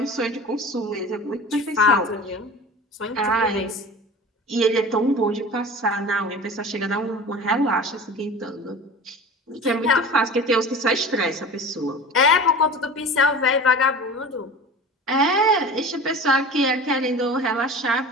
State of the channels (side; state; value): both; normal; correlation 0.36